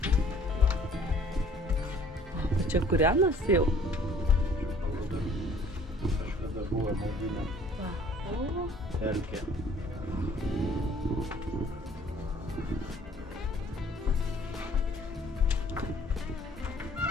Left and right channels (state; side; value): normal; both; correlation 0.56